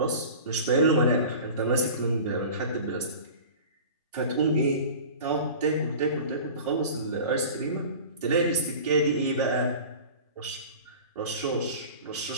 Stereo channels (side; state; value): both; inverted; correlation -0.37